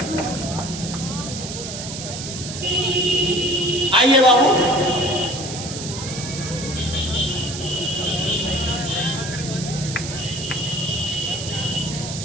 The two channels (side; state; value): right; noise; hiss, 8 dB below the sound